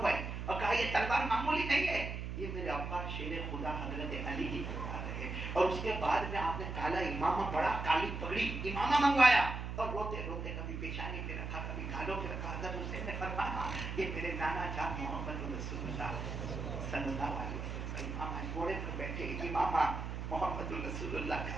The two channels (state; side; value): noise; right; hum, 5 dB below the sound